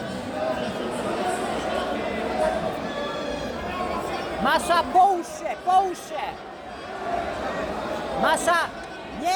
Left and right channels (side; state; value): both; identical; correlation 1.00